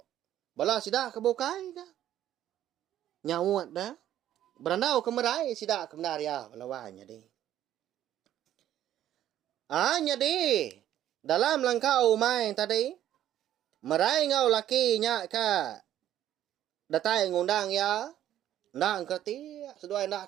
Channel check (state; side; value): quieter; left; 11.9 dB